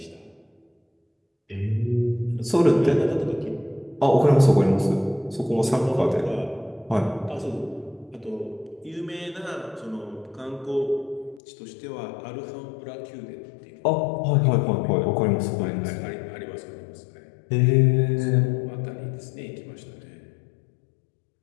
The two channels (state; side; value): drops out; right; at 11.4 s